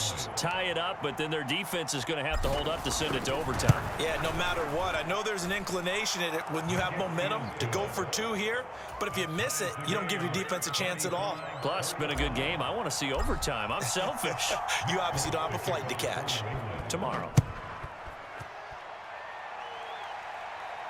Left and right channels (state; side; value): identical; both; correlation 1.00